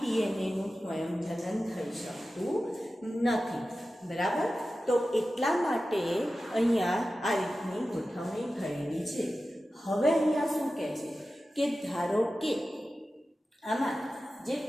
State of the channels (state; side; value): normal; both; correlation 0.94